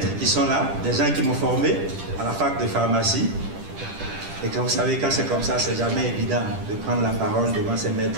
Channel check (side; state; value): left; late; 10 ms